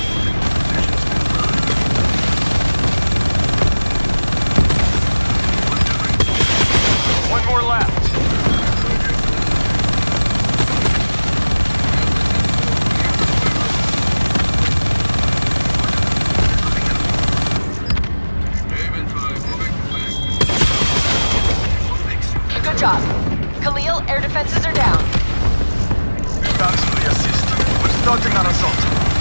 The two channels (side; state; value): both; inverted; correlation -1.00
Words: One more left. Good job. Khalil, air defenses are down. Thanks for the assist. We're starting an assault.